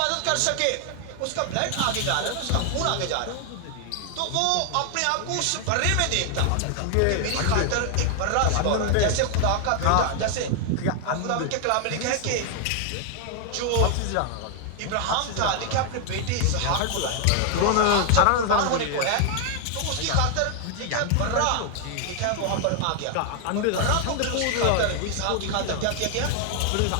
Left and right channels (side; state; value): both; different; correlation 0.00